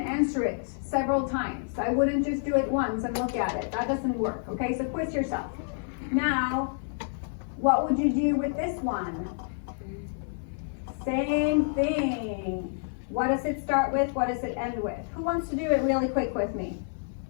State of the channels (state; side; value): silent; right; 59 dB below the other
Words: answer it several times. I wouldn't just do it once and look at it. That doesn't work, okay? So quiz yourself. Now, what would you do with this one? Same thing. What does it start with? What does it end with? Who wants to do it really quick with me?